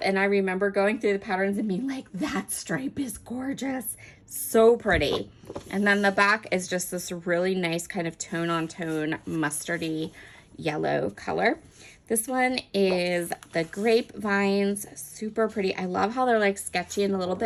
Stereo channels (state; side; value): identical; both; correlation 1.00